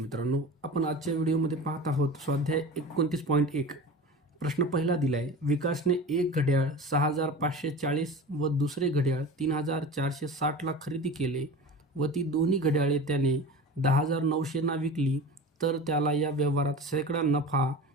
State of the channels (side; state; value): both; normal; correlation 0.33